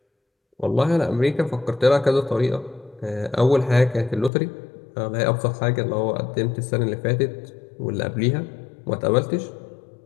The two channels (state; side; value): drops out; right; at 4.3 s